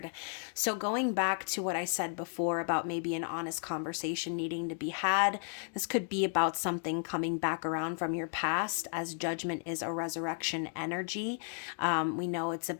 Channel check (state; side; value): silent; right; 55 dB below the other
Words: So going back to what I said before about maybe an honest conversation needing to be had, this could be about something coming back around from your past, as Judgment is a resurrection energy. We know it's